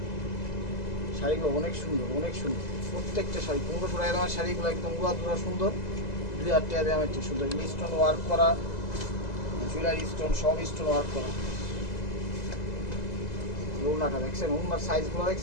শাড়িগুলো অনেক সুন্দর, অনেক সুন্দর প্রত্যেকটা শাড়ি। 1500 টাকা দামের শাড়িগুলো একদম উড়া সুন্দর, 2000 টাকা দামের ঠিক সুন্দর। স্টোন ওয়ার্ক করা, জুয়েলারি স্টোন, সব স্টোন ওয়ার্ক করা। ওড়নাটা দেখছেন, ওড়নার সাইজগুলো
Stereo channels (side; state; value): right; late; 2.0 ms